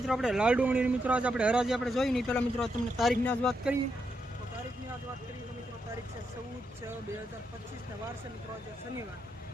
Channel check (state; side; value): normal; both; correlation 0.82